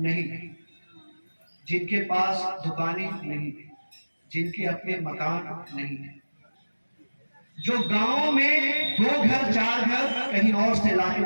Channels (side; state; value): both; inverted; correlation -1.00